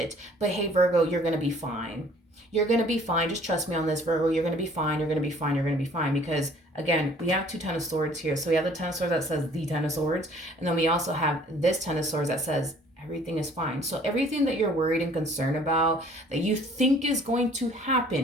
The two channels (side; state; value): both; normal; correlation 0.55